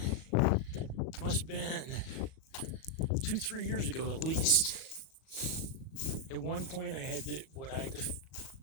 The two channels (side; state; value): right; late; 37 ms